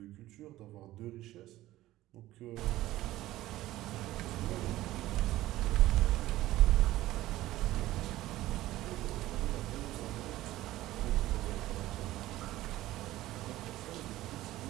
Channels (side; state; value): left; quieter; 15.8 dB